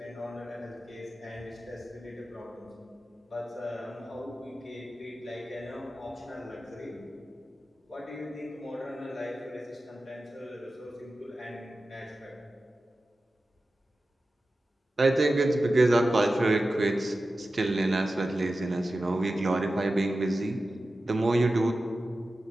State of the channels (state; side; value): normal; both; correlation 0.94